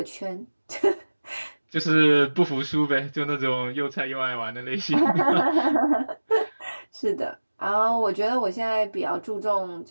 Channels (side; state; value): both; inverted; correlation -1.00